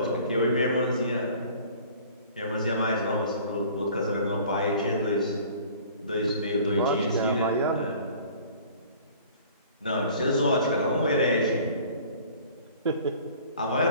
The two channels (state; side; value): inverted; both; correlation -0.48